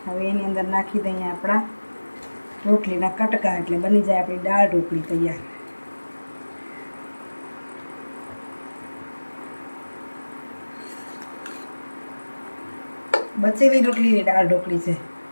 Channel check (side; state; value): both; inverted; correlation -1.00